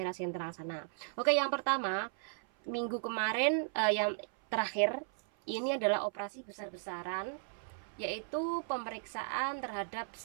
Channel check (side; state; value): left; silent; 54 dB below the other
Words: sentral sana. Oke, yang pertama minggu kemarin, yang terakhir ini adalah operasi besar-besaran, yaitu pemeriksaan terhadap